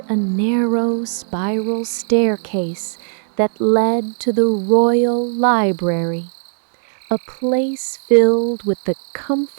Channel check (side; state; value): left; silent; digital silence